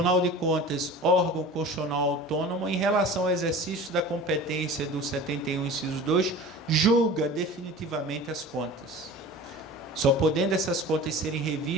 de Contas, órgão constitucional autônomo, em relação ao exercício da competência do 71, inciso 2, julga definitivamente as contas, só podendo essas contas serem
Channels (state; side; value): normal; both; correlation 0.38